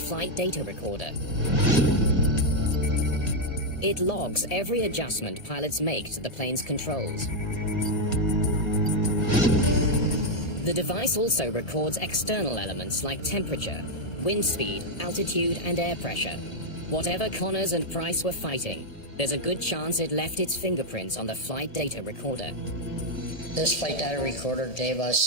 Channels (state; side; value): late; right; 1.7 ms